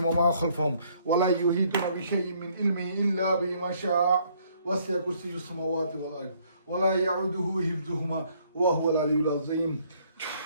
وما خلفهم ولا يحيطون بشيء من علمه إلا بما شاء وسع كرسيه السماوات والأرض ولا يعوده حفظهما وهو العلي العظيم.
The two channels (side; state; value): both; inverted; correlation -0.65